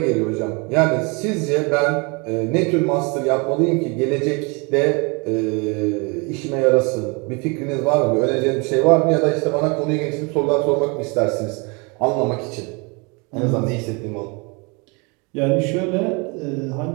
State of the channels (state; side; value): quieter; left; 30.3 dB